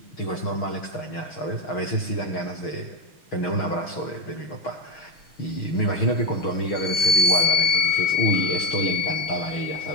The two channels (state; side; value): late; right; 6.3 ms